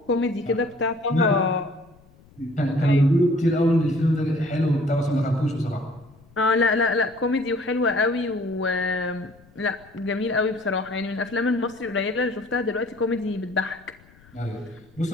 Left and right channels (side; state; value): left; noise; rumble, 27 dB below the sound